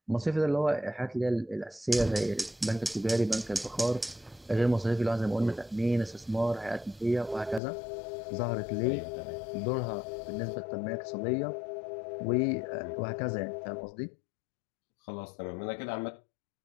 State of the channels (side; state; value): right; drops out; at 7.6 s